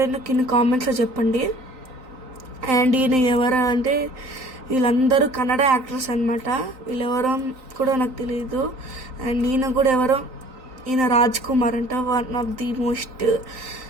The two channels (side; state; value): left; late; 3.9 ms